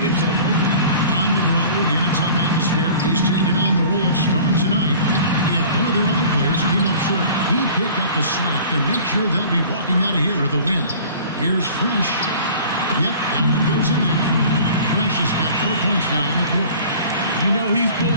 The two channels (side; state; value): both; inverted; correlation -0.45